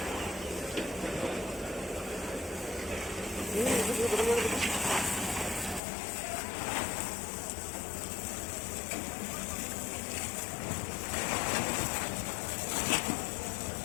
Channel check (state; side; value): drops out; right; at 5.8 s